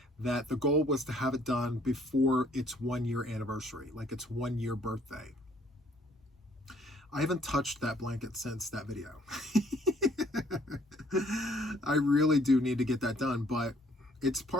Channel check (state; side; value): normal; both; correlation 0.62